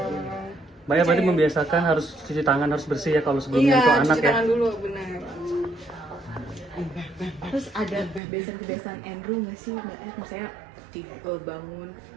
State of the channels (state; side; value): drops out; left; at 8.2 s